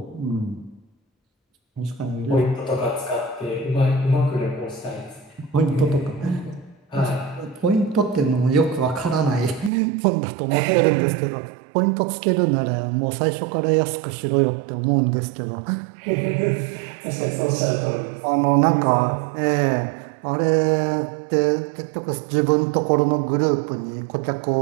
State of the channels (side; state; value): left; drops out; at 9.7 s